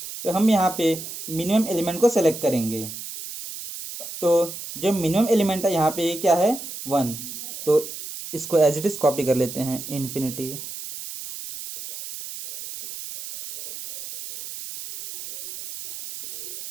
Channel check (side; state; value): right; noise; hiss, 10 dB below the sound